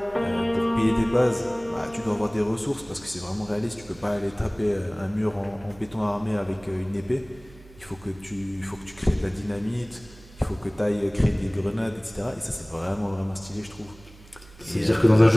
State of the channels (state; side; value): noise; right; hum, 22 dB below the sound